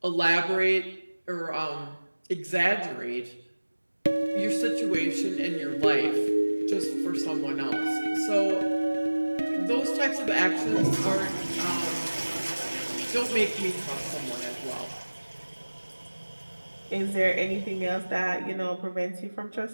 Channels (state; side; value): inverted; both; correlation -1.00